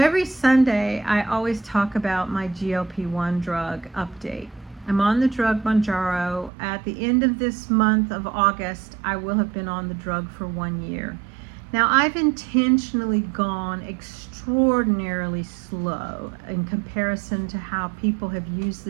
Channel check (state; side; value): drops out; left; at 6.5 s